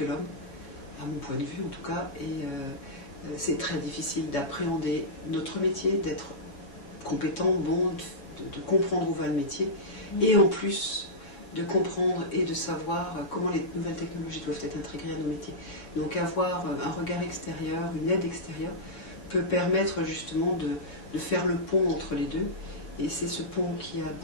l'homme, à mon point de vue en tout cas, et c'est très difficile d'appréhender notre métier, d'être compétent, bon, de comprendre où va le métier, et en plus de comprendre et de savoir comment les nouvelles technologies doivent être intégrées à nos métiers. Donc avoir un regard extérieur, une aide extérieure, peut permettre justement de faire le pont entre les deux. Et c'est ce pont qui a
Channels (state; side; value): late; right; 7.2 ms